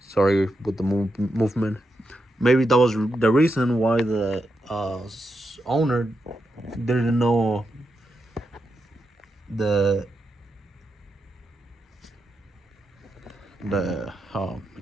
with the movement. Maybe that was the reason why the owner didn't know the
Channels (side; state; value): both; normal; correlation 0.85